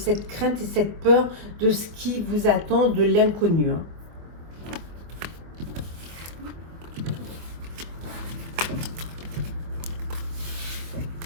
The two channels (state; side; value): late; left; 24 ms